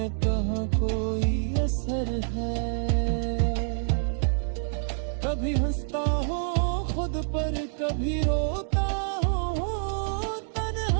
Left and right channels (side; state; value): left; silent; digital silence